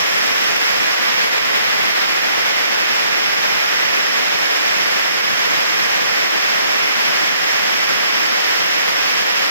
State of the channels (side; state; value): both; inverted; correlation -0.65